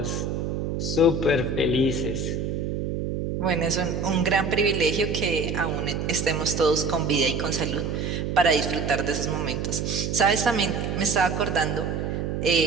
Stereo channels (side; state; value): right; noise; hum, 2 dB below the sound